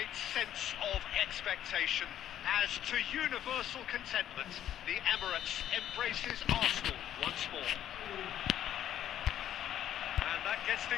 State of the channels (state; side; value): quieter; right; 11.1 dB